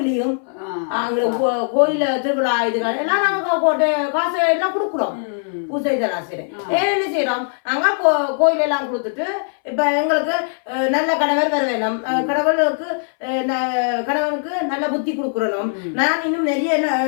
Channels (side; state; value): right; silent; 64 dB below the other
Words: அங்க கோயில திருவிழா இதுகள் எல்லாம் நாங்க காசு எல்லாம் கொடுக்குறோம் பூஜை இதெல்லாம் செய்யறேன் என்ன செய்யறோம் நாங்க கோயில் எல்லாம் கொடுத்துட்டு இப்ப எங்களுக்கு நல்ல கணவர் வர வேணும் கணவனுக்கு நல்ல புத்தி கொடுக்குறணும் நான் இன்னும் நிறைய